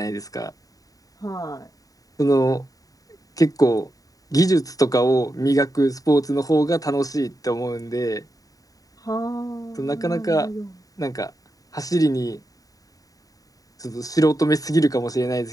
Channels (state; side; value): late; right; 0.17 ms